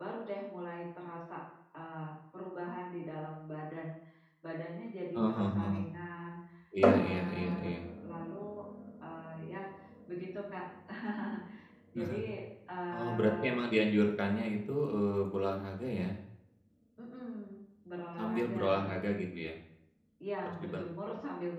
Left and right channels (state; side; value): identical; both; correlation 1.00